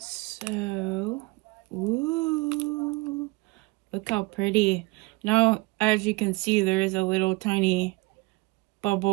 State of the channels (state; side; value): quieter; left; 23.4 dB